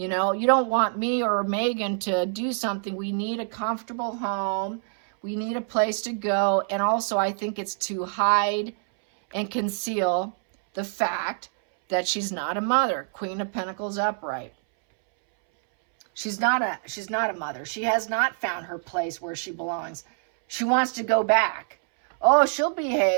know, you don't want me or Megan to do something. We need a comfortable home. We need a place to go. And also, I think it's to hide and conceal the fact that she's not a mother. Queen of Pentacles upright. She's not a mother. She has not found her place where she belongs. She wants to go back. Oh, she'll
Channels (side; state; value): left; silent; 61 dB below the other